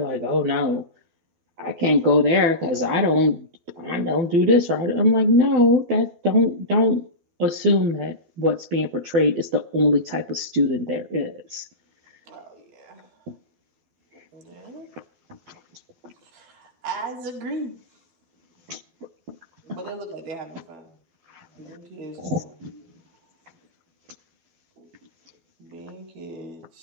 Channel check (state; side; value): late; left; 12 ms